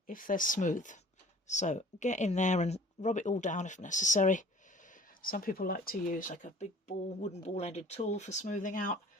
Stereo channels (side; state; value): both; normal; correlation 0.49